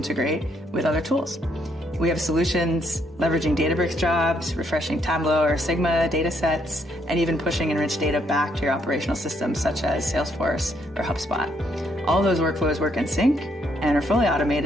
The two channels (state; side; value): normal; both; correlation 0.72